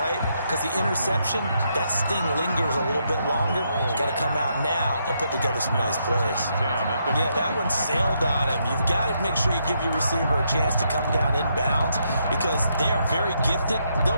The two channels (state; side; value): inverted; both; correlation -0.77